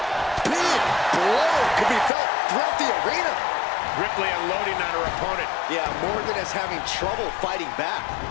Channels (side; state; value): right; drops out; at 2.1 s